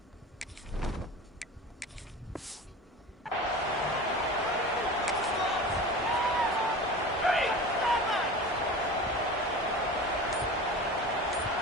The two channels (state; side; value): normal; both; correlation 0.34